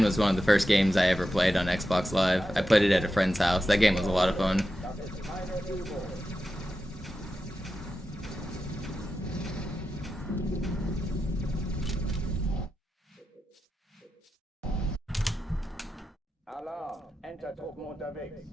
was one of the first games I ever played on Xbox Live. I played it at a friend's house. That game was a lot of fun.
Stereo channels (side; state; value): both; normal; correlation 0.90